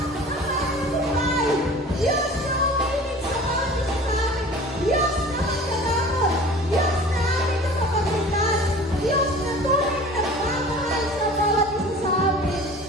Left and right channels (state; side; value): normal; both; correlation 0.43